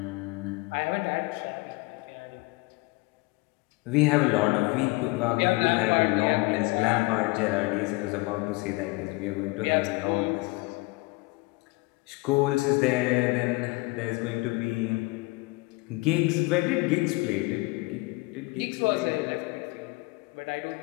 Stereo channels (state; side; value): quieter; right; 24.7 dB